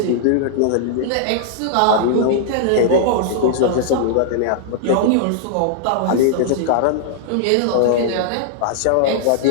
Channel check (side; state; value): both; different; correlation -0.01